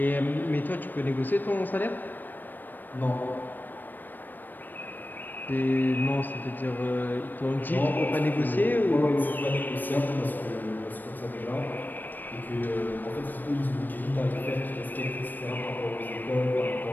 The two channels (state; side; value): late; right; 0.090 ms